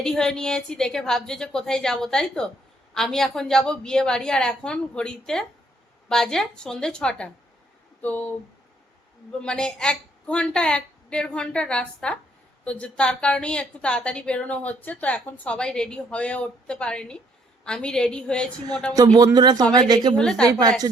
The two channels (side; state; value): both; normal; correlation 0.67